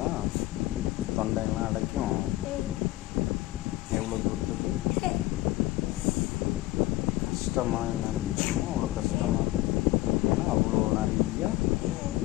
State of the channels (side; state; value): right; quieter; 18.0 dB